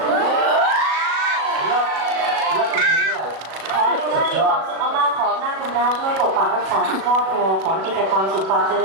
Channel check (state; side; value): late; left; 37 ms